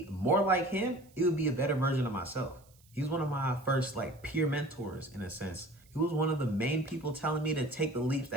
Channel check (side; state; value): right; noise; hiss, 29 dB below the sound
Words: more like him, it would be a better version of myself. He was one of my first like peer mentors in a sense. He was one of the main people telling me to take the leaps